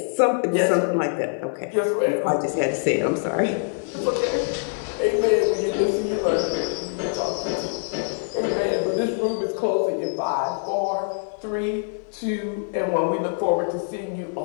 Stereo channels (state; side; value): silent; right; 61 dB below the other